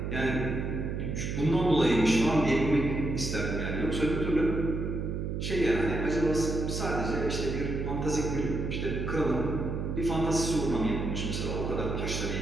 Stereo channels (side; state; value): right; noise; hum, 3 dB below the sound